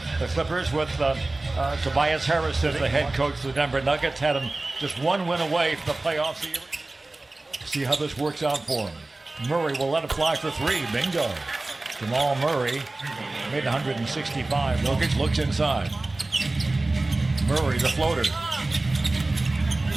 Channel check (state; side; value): quieter; left; 3.0 dB